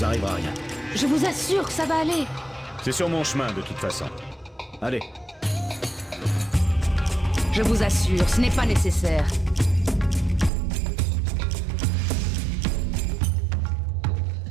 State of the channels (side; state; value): left; drops out; at 10.5 s